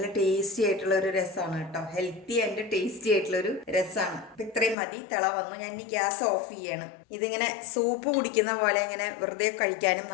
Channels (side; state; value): right; drops out; at 4.8 s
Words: ടേസ്റ്റി ആയിട്ടുള്ള ഒരു രസമാണ് കേട്ടോ. ഹെൽത്തി ആൻഡ് ടേസ്റ്റി ആയിട്ടുള്ളൊരു രസമാണ്. അപ്പം ഇത്രയും മതി. തിള വന്നു. ഞാൻ ഇനി ഗ്യാസ് ഓഫ് ചെയ്യണം. ഇതിങ്ങനെ സൂപ്പ് കുടിക്കുന്ന പോലെ ഇങ്ങനെ വെറുതെ കഴിക്കാനും